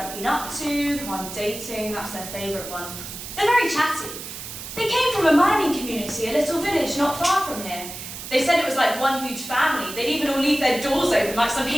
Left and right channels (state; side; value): noise; right; hiss, 10 dB below the sound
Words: been up to, who I'm dating. That's their favourite one. They're very chatty. They came from a mining community, a little village not far from here. They said it was like one huge family. They'd even all leave their doors open like some